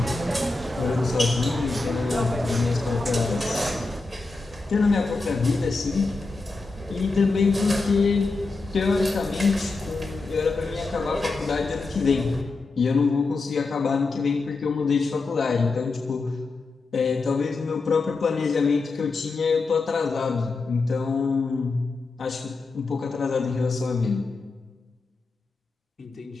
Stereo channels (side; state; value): right; quieter; 3.7 dB